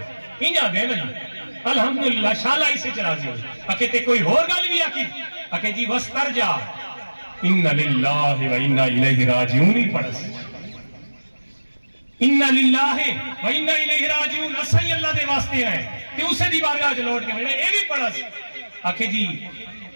انجا دے نہیں الحمدللہ، شالہ اسی چرازی ہوئے. اکے تے کوئی اور گالی بھی آکی اکے جی وستر جا ان للہ و انا الیہ راجعون ہی پڑھس، انا للہ و انا الیہ راجعون اسائی اللہ دے واسطے ہیں کہ اسے دی بارگاہ لوٹ کے اے بھی پڑھس. آکھے جی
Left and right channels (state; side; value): inverted; both; correlation -1.00